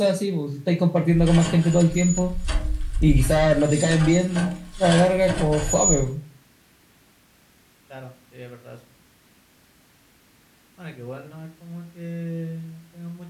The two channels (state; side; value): identical; both; correlation 1.00